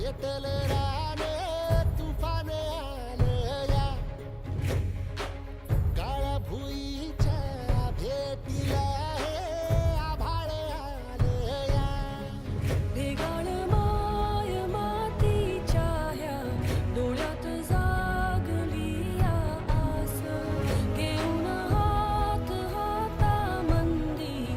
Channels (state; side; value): identical; both; correlation 1.00